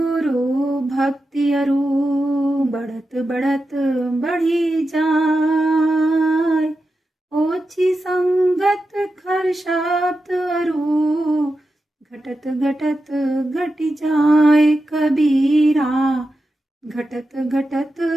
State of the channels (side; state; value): both; normal; correlation 0.90